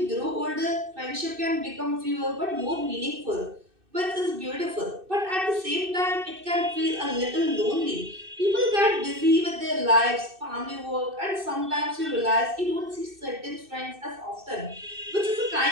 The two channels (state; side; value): late; left; 2.6 ms